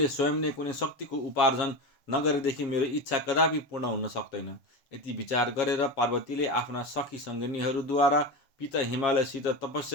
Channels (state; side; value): late; right; 7.4 ms